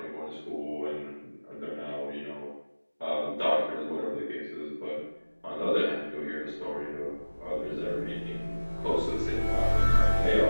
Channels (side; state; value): both; inverted; correlation -1.00